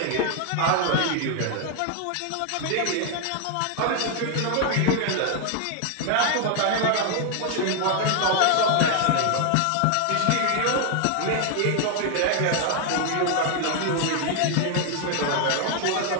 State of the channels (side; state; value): both; different; correlation 0.00